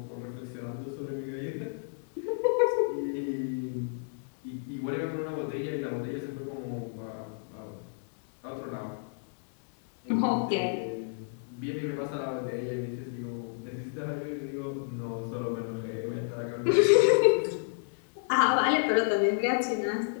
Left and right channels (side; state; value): right; silent; 57 dB below the other